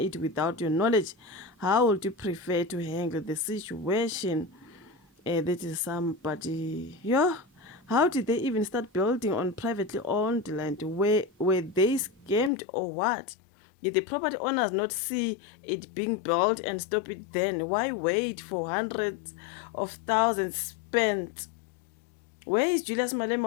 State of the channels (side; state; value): right; drops out; at 12.5 s